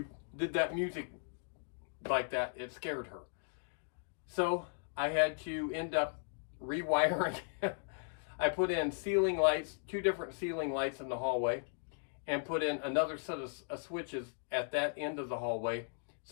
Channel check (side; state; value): right; silent; digital silence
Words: did that music like that, it scared her. So I had to end up rewiring. I put in ceiling lights, 2 different ceiling lights in the hallway, and put in another set of switches at that end of the hallway.